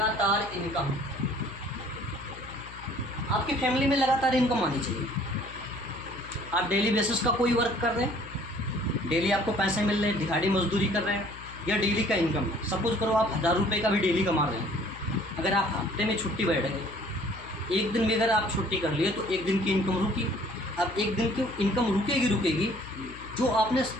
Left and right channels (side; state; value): left; noise; hum, 16 dB below the sound